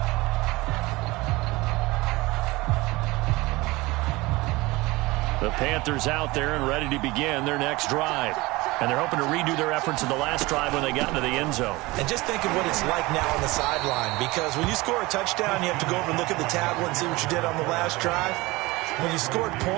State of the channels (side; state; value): left; quieter; 21.6 dB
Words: The Panthers out there and ready to begin their next drive. And they're hoping to redo their efforts in the last drive when they got into the end zone. And just think of what it's like now on the sideline, because when you score a touchdown, you have to go over and look at the tablet and see what you did on the last drive. When you scored